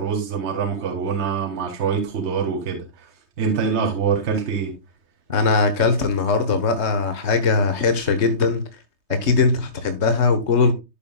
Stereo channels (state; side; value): late; left; 3.2 ms